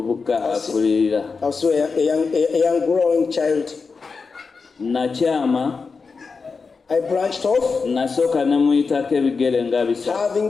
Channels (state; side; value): quieter; right; 4.8 dB